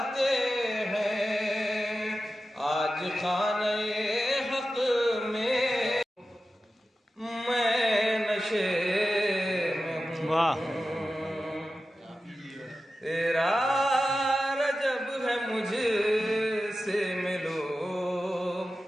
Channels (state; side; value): normal; both; correlation 0.93